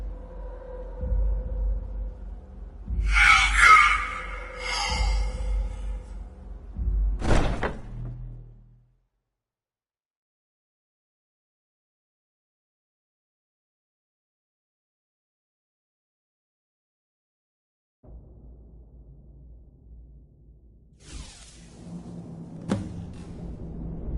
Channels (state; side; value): identical; both; correlation 1.00